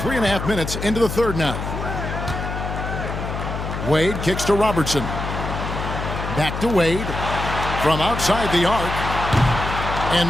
minutes into the third now. Wade kicks to Robertson. Back to Wade. From outside the arc. And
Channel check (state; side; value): noise; left; hum, 5 dB below the sound